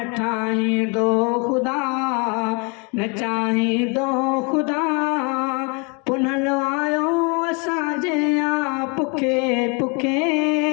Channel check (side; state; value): right; quieter; 32.9 dB